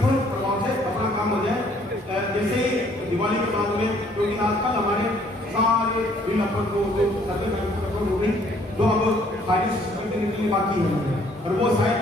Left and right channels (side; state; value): both; normal; correlation 0.62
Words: प्रभाव से अपना काम हो जाए। जैसे ही दिवाली के बाद में, क्योंकि आजकल हमारे सारे बिल अपन को हो गई, जो अब फाइनेंस निकलने बाकी है और वो शायद